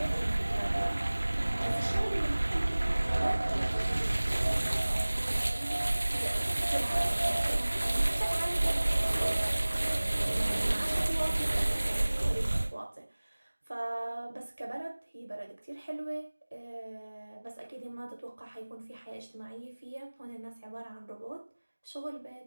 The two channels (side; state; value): both; inverted; correlation -1.00